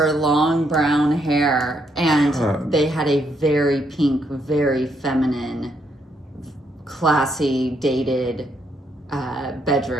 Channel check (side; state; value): both; normal; correlation 0.75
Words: long brown hair, and they had a very pink, very feminine, classy, dated